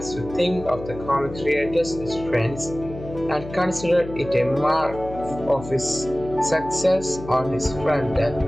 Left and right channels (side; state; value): left; noise; hum, 13 dB below the sound